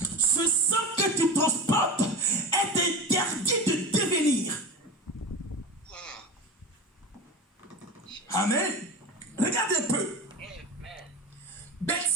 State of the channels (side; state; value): both; normal; correlation 0.28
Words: ce sang que tu transportes est interdit de devenir. Amen. Regardez un peu.